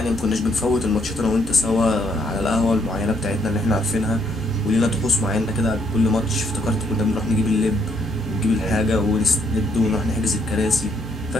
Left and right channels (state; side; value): normal; both; correlation 0.71